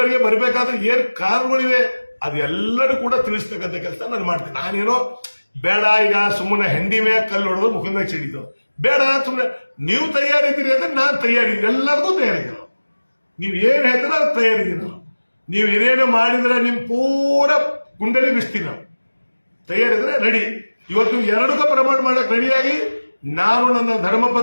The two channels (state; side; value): inverted; both; correlation -1.00